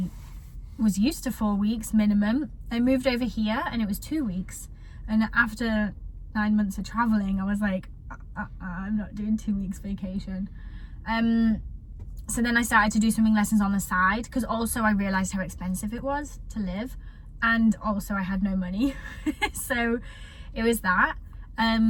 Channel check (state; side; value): identical; both; correlation 1.00